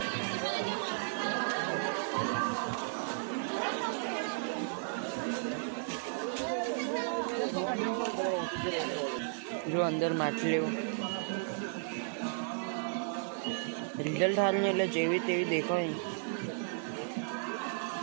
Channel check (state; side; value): silent; left; digital silence